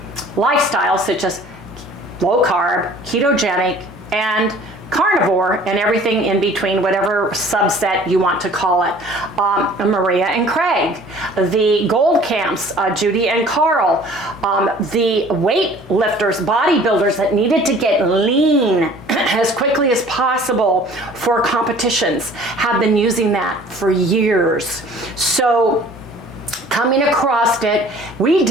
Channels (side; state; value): both; normal; correlation 0.50